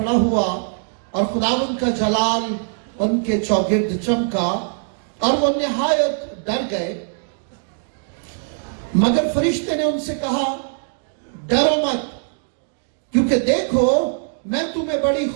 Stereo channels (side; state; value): left; silent; 63 dB below the other